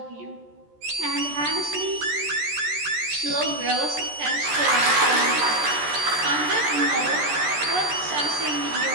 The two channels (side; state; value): left; late; 14 ms